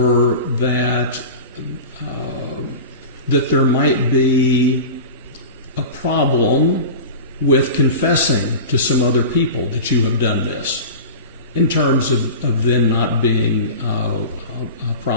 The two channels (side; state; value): both; inverted; correlation -0.31